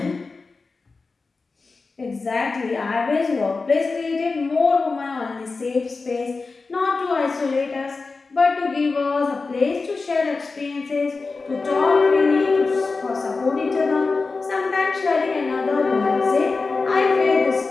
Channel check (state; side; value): quieter; right; 4.1 dB